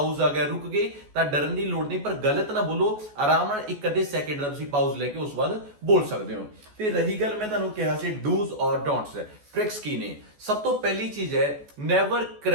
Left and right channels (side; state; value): left; late; 14 ms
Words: ਆ ਗਿਆ ਰੁਕ ਗਏ ਤਾਂ ਡਰਨ ਦੀ ਲੋੜ ਨਹੀਂ ਪਰ ਗਲਤ ਨਾ ਬੋਲੋ ਆਰਾਮ ਨਾਲ ਇੱਕ ਅੱਧੇ ਸੈਕਿੰਡ ਦਾ ਤੁਸੀਂ ਪਾਊਜ਼ ਲੈ ਕੇ ਉਸ ਬਾਅਦ ਬੋਲ ਸਕਦੇ ਹੋ ਤੇ ਰਹੀ ਗੱਲ ਮੈਂ ਤੁਹਾਨੂੰ ਕਿਹਾ ਸੀ ਡੂਜ਼ ਔਰ ਡੋਂਟਸ ट्रिक्स की ने सब तो पहली चीज है नेवर